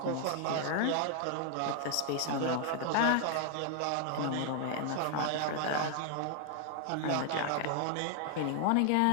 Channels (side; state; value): both; different; correlation 0.00